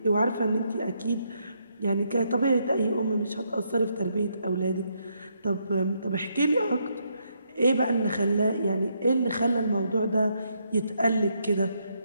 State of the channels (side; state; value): both; inverted; correlation -0.76